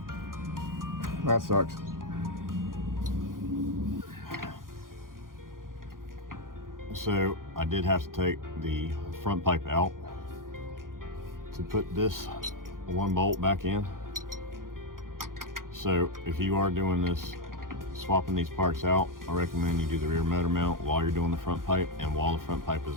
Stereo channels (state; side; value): late; left; 0.90 ms